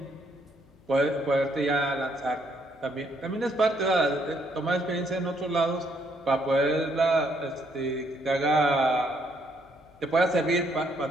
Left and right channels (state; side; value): noise; left; hum, 29 dB below the sound